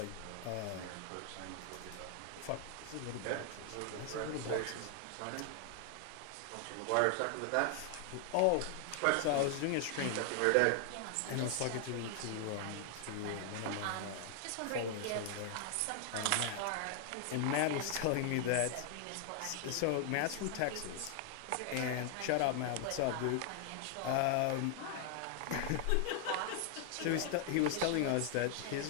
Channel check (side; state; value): both; different; correlation 0.00